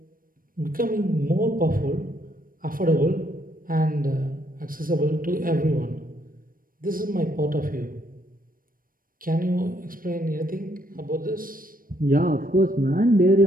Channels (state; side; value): late; left; 0.41 ms